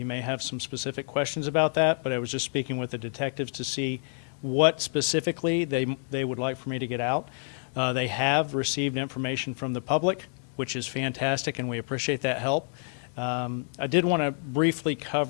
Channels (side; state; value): right; silent; 57 dB below the other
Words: may have some specific questions about that, but I was just speaking with the detectives to see what specifically they would like for me to get out. They have received information from the public, which is fantastic, and we appreciate that help. I did want to briefly